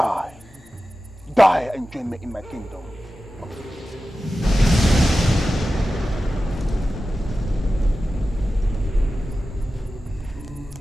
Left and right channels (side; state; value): both; normal; correlation 0.94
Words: Die and join me in my kingdom.